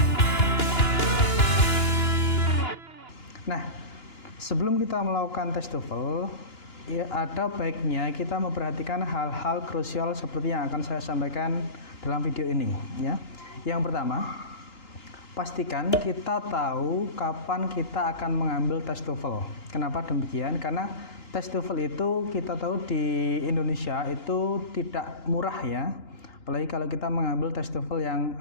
Nah, sebelum kita melakukan tes TOEFL, ya ada baiknya kita memperhatikan hal-hal krusial seperti yang akan saya sampaikan dalam video ini ya. Yang pertama, pastikan kita tahu kapan kita akan mengambil tes TOEFL. Kenapa demikian? Karena tes TOEFL itu kita tahu di Indonesia itu tidak murah ya. Apalagi kalau kita mengambil tes TOEFL yang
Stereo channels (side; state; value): right; late; 2.9 ms